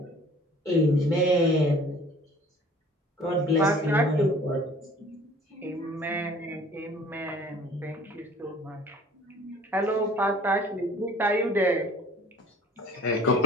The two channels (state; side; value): normal; both; correlation 0.51